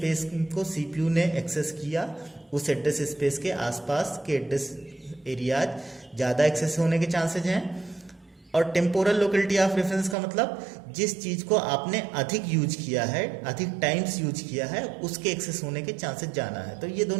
को सीपीयू ने एक्सेस किया उस एड्रेस स्पेस के आसपास के एड्रेस एरियाज ज़्यादा एक्सेस होने के चांसेज हैं। और टेम्पोरल लोकेलिटी ऑफ रेफरेंस का मतलब जिस चीज़ को आपने अधिक यूज किया है, अधिक टाइम्स यूज किया है, उसके एक्सेस होने के चांसेस ज़्यादा है। तो ये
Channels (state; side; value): drops out; left; at 10.2 s